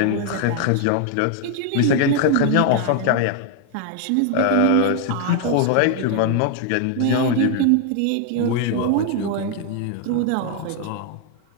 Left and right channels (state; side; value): different; both; correlation 0.00